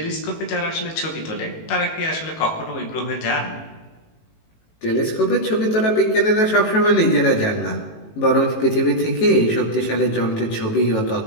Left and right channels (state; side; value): late; right; 18 ms